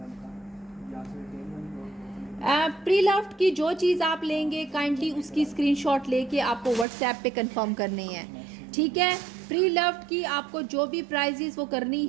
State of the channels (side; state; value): left; drops out; at 6.9 s